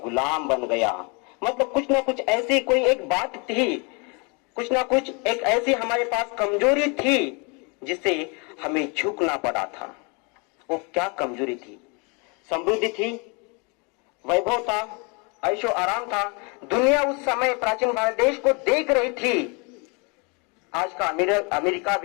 बन गया। मतलब कुछ ना कुछ ऐसी कोई एक बात थी, कुछ ना कुछ एक ऐसी हमारे पास कमजोरी थी जिससे हमें झुकना पड़ा था। वो क्या कमजोरी थी? समृद्धि थी, वैभव था, ऐशो आराम था। दुनिया उस समय प्राचीन भारत देश को देख रही थी। आज का अमेरिका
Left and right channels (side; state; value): right; quieter; 32.2 dB